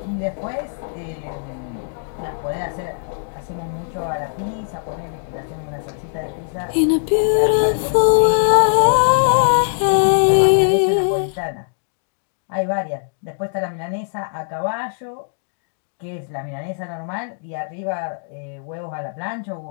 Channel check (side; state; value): right; silent; digital silence